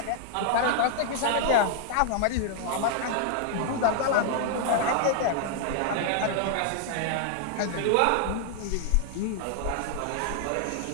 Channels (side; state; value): both; different; correlation 0.00